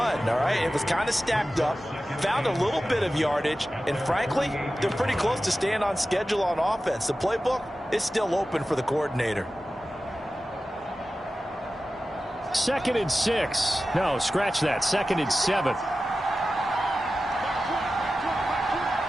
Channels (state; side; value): normal; both; correlation 0.94